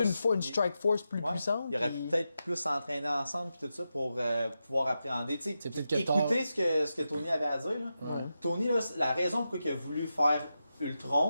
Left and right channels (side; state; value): both; inverted; correlation -0.89